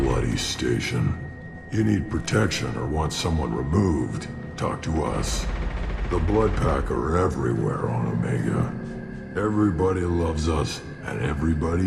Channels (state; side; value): identical; both; correlation 1.00